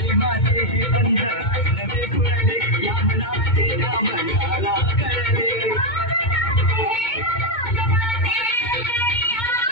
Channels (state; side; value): late; right; 2.2 ms